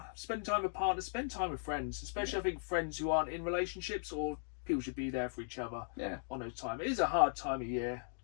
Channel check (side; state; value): right; silent; digital silence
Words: spending time with partners, spend time with friends. Especially, I think, friends who aren't in relationships, or people should be there for each other on those times. It is a hard time of year.